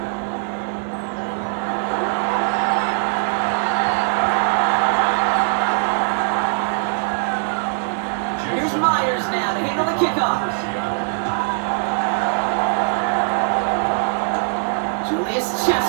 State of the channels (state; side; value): silent; left; 65 dB below the other